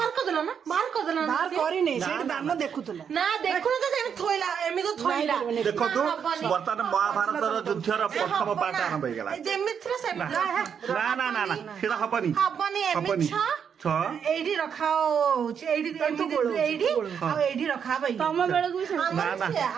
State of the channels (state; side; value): quieter; left; 7.5 dB